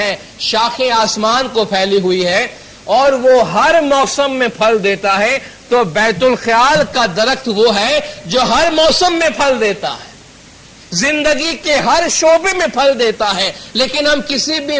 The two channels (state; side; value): identical; both; correlation 1.00